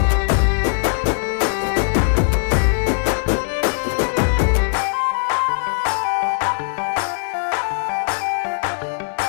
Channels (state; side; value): silent; right; 66 dB below the other